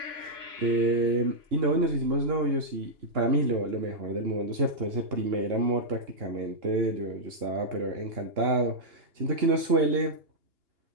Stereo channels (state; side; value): late; left; 2.8 ms